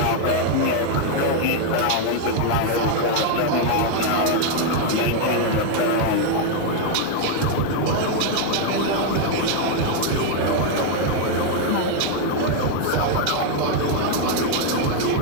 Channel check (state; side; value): different; both; correlation 0.00